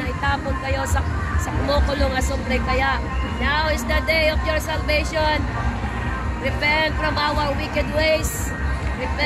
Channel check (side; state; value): both; identical; correlation 1.00